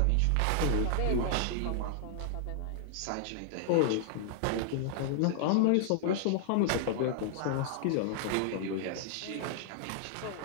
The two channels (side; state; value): both; different; correlation -0.01